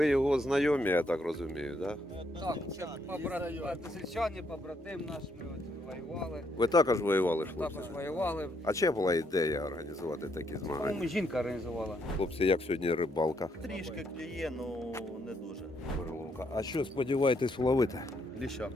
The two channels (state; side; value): normal; both; correlation 0.74